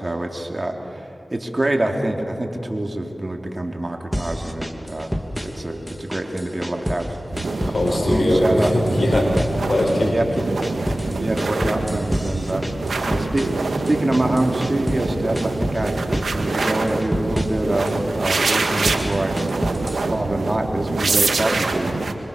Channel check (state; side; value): normal; both; correlation 0.96